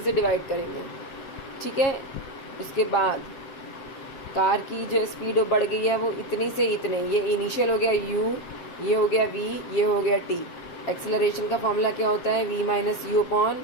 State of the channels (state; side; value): late; right; 7.4 ms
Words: से डिवाइड करेंगे, ठीक है। उसके बाद कार की जो स्पीड बढ़ गई है वो इतनी से इतने, ये इनिशियल हो गया U, ये हो गया V, ये हो गया T। एक्सेलरेशन का फॉर्मूला क्या होता है? V minus U upon